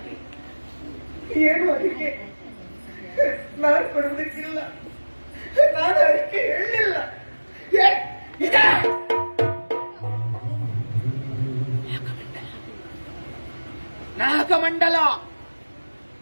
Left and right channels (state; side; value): inverted; both; correlation -1.00